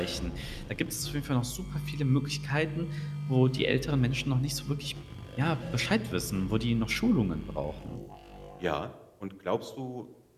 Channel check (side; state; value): both; identical; correlation 1.00